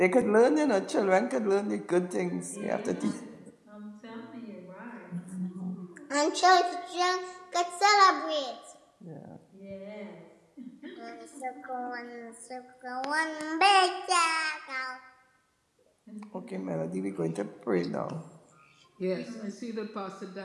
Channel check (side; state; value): both; identical; correlation 1.00